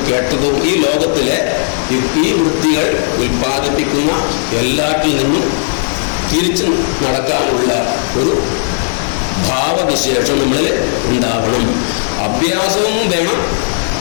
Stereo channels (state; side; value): silent; right; digital silence